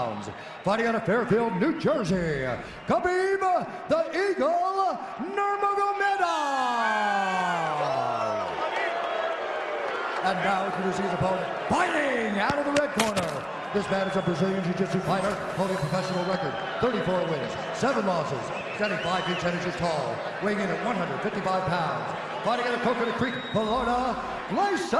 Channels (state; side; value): identical; both; correlation 1.00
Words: fighting out of Fairfield, New Jersey, Khabib the Eagle Nurmagomedov. And now introducing his opponent, fighting out of the red corner. This man is a Brazilian Jiu-Jitsu fighter holding a professional record, 34 wins, 7 losses, standing 5 feet 10 inches tall, weighing in at 155 pounds, fighting out of Coconut Creek, Florida,